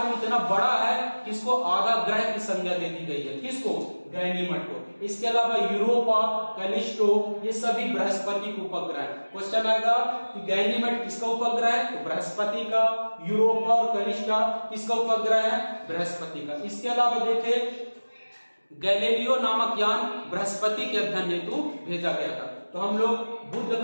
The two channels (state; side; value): inverted; both; correlation -1.00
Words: इतना बड़ा है कि इसको आधा ग्रह की संज्ञा दे दी गई है। किसको? गैनीमेड को। इसके अलावा यूरोपा, कैलिस्टो, ये सभी बृहस्पति के उपग्रह है। क्वेश्चन आएगा कि गैनीमेड किसका उपग्रह है? तो बृहस्पति का। यूरोपा और कैलिस्टा किसका उपग्रह है? बृहस्पति का। इसके अलावा देखें गैलीलियो नामक यान बृहस्पति के अध्ययन हेतु भेजा गया था। तो हम लोग बुध